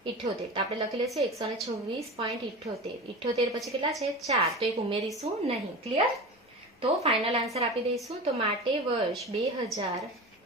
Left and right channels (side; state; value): both; normal; correlation 0.30